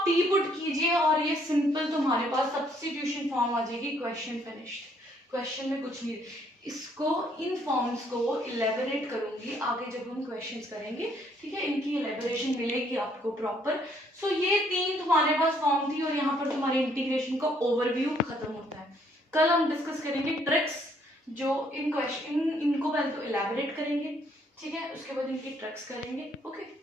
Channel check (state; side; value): normal; both; correlation 0.67